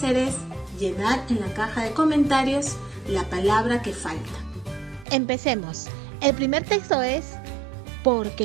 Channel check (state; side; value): drops out; left; at 5.1 s